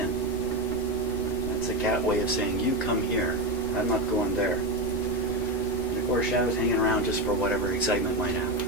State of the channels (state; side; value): normal; both; correlation 0.14